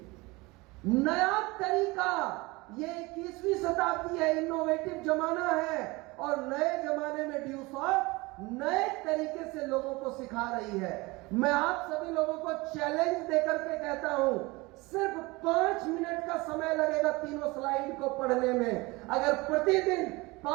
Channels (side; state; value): left; quieter; 23.4 dB